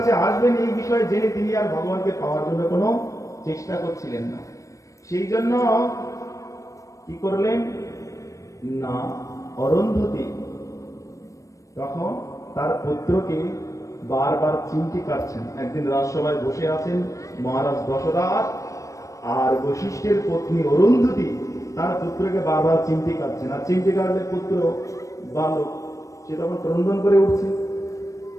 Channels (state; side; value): late; right; 0.16 ms